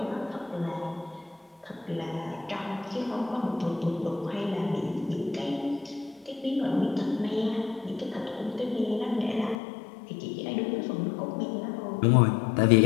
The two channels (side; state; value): right; drops out; at 9.6 s